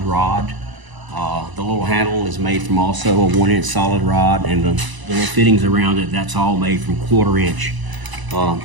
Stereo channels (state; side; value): late; left; 1.0 ms